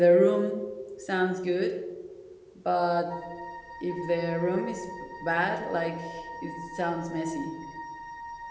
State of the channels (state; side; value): identical; both; correlation 1.00